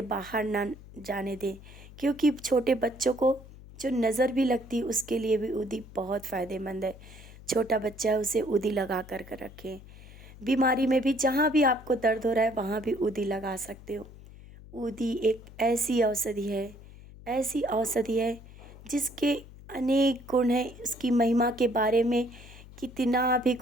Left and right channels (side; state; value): left; noise; hum, 18 dB below the sound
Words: बाहर ना जाने दें। क्योंकि छोटे बच्चों को जो नज़र भी लगती है, उसके लिए भी ऊदी बहुत फ़ायदेमंद है। छोटा बच्चा है उसे ऊदी लगा कर रखें। बीमारी में भी जहाँ भी आपको दर्द हो रहा है वहाँ भी ऊदी लगा सकते हो। ऊदी एक ऐसी औषधि है जिसके अनेक गुण हैं। उसकी महिमा के बारे में कितना भी